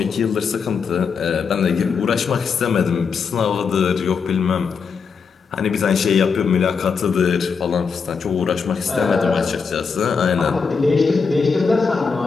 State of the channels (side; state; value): right; quieter; 5.6 dB